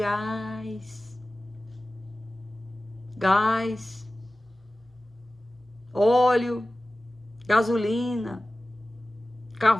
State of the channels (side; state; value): both; normal; correlation 0.96